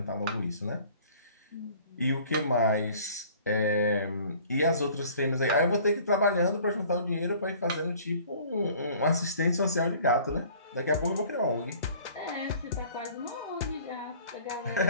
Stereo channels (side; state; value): both; inverted; correlation -0.51